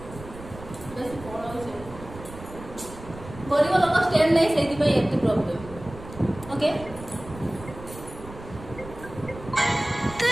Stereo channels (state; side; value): noise; right; rumble, 15 dB below the sound